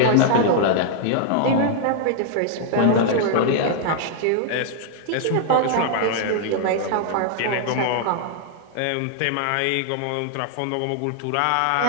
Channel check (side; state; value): both; different; correlation -0.01